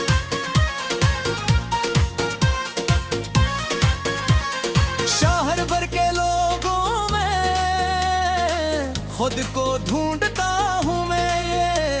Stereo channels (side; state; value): both; identical; correlation 1.00